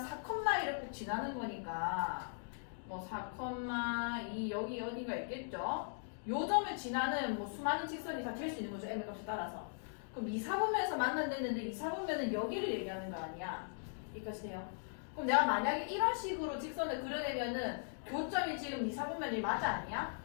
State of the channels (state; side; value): silent; right; digital silence